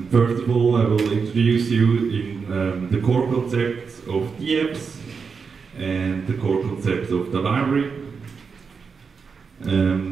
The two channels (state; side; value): quieter; left; 5.5 dB